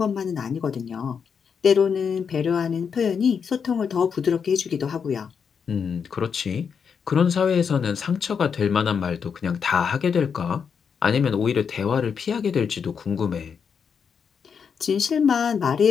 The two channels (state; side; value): quieter; right; 6.6 dB